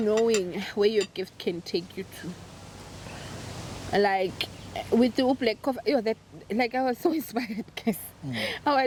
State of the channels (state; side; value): identical; both; correlation 1.00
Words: where your gift can take you to. Like with the black coffee, you know, that, like, I was so inspired, guys. I